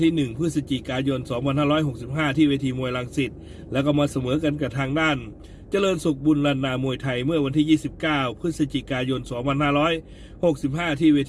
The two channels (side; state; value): both; identical; correlation 1.00